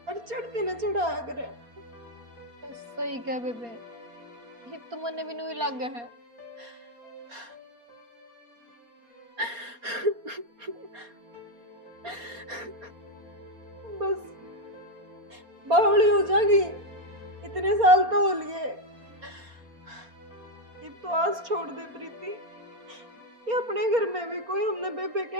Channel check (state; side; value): late; left; 4.3 ms